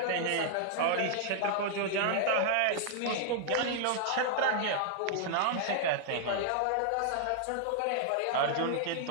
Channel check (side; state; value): both; different; correlation -0.01